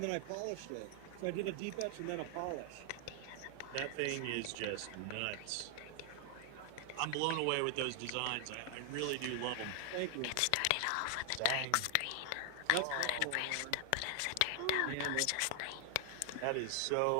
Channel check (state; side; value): different; both; correlation 0.00